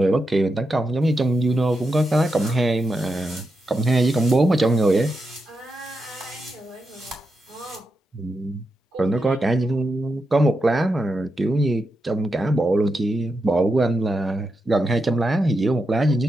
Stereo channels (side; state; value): both; normal; correlation 0.87